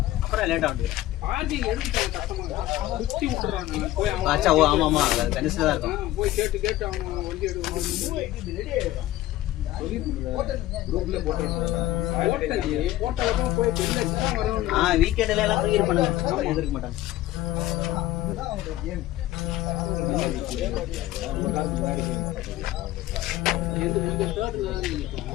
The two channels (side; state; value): right; quieter; 15.2 dB